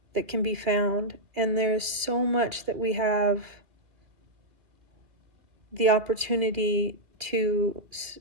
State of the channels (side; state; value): left; late; 2.1 ms